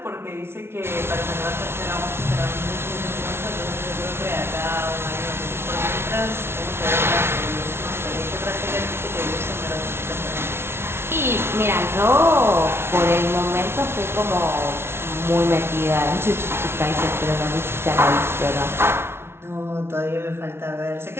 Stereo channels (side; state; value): left; late; 0.12 ms